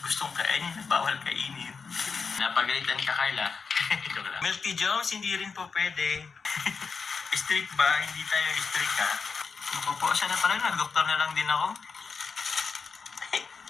gustong kainin na bawal kainin. Napagalitan ka Carla. Joke lang. Milk Tea Jones, hindi rin po pwede. Strict ba? Hindi tayo strict ha. Naku po, sana pala nag-doktor na lang din ako.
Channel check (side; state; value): right; quieter; 5.2 dB